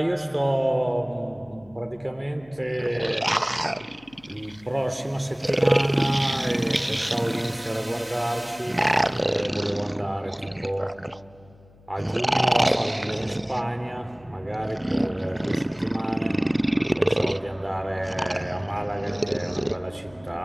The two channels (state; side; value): noise; left; hum, 26 dB below the sound